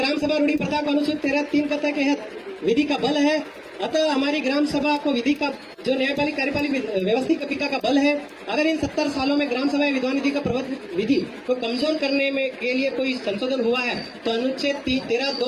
सभा रूढ़ी प्रथा को अनुच्छेद 13(3) के तहत विधि का बल है। अतः हमारी ग्राम सभा को विधि का जो न्यायपालिक कार्यपालिक व्यवस्थिका का बल है। अगर इन 70 सालों में ग्राम सभा विधान विधि का प्रबंध विधि को कमजोर करने में के लिए कोई संशोधन हुआ है तो अनुच्छेद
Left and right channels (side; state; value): both; identical; correlation 1.00